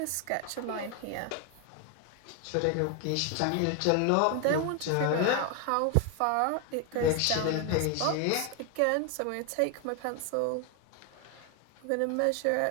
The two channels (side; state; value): both; different; correlation 0.01